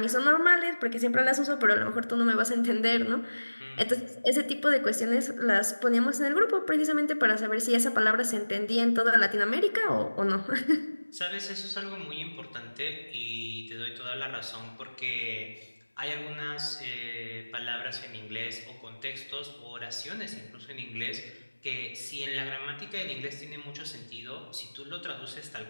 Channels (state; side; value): inverted; both; correlation -1.00